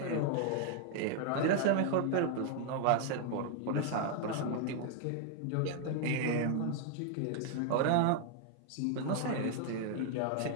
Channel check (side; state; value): both; different; correlation 0.00